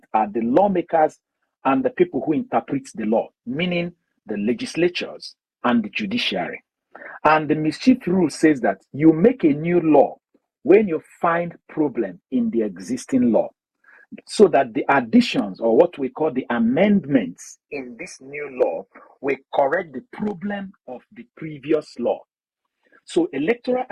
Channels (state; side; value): identical; both; correlation 1.00